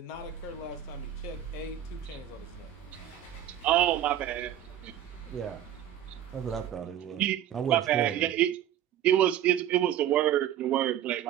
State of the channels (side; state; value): left; quieter; 11.1 dB